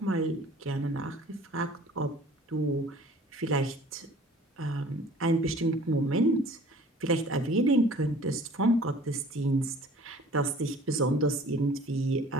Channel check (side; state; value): both; normal; correlation 0.49